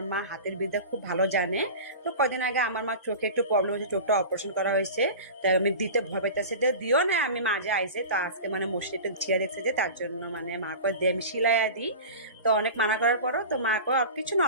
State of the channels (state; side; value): inverted; both; correlation -0.33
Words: মা হাতের বিদ্যা খুব ভালো জানে। তো কদিন আগে আমার মা চোখে একটু প্রবলেম হয়েছে, চোখটা অপারেশন করা হয়েছে। তাই আমি দিতে ভয় পাইতেছি, তো দিও না, আমি মাঝে আইসে তো আজকে মানে মসজিদটা ছিঁড়ে দেখছে যে তার জন্য মানে মা কয় দিয়ে আমি সিলাইয়া দিই। তো অনেক মানা করার পরও তো মা কয় কিছু না,